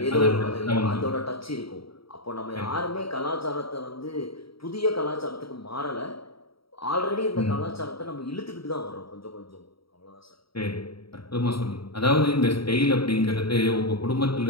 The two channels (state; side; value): late; right; 0.75 ms